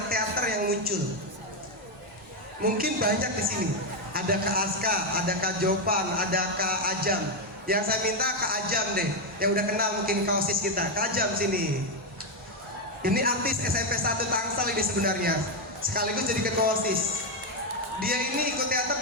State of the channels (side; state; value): both; normal; correlation 0.04